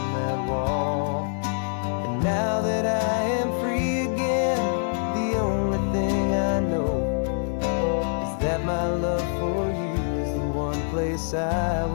that wall. And now that I am free again, the only thing I know is that my love for you is the one place I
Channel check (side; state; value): right; silent; 62 dB below the other